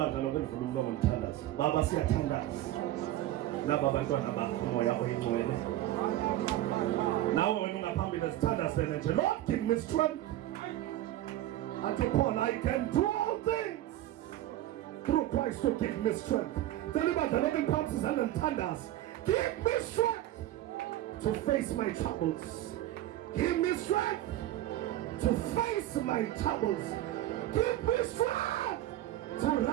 lonke livule umlomo ngithandaze. Baba siyathandaza laba bantwana bakho moya oyingcwele. Nawe wena ungaphambili sithandazene nje. Lord, give me strength. Unto Paul, I can do all things through Christ to give me strength. Tell ibandla lonke phansi izandla ngithandaze. Give me strength to face my troubles. Give me strength to face my troubles. Give me strength to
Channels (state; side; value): quieter; left; 14.2 dB